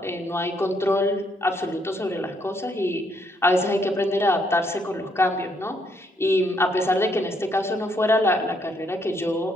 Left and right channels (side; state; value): both; normal; correlation 0.72